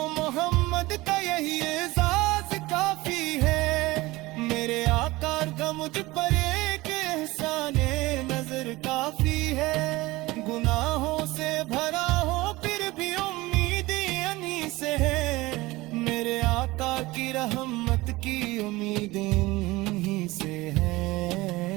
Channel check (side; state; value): left; quieter; 20.3 dB